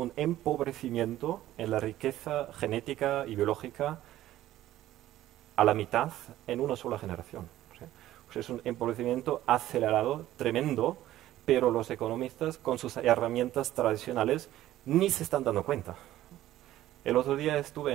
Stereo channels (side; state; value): left; quieter; 14.1 dB